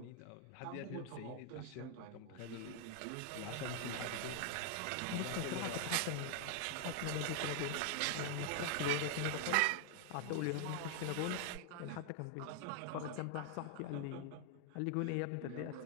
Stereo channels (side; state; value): both; different; correlation 0.00